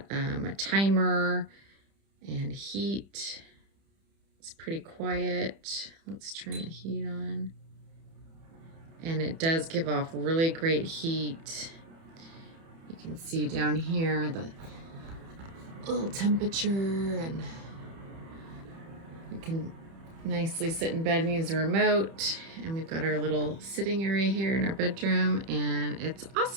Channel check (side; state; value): left; late; 30 ms